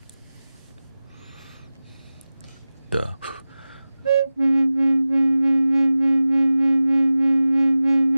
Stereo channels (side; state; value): both; inverted; correlation -0.96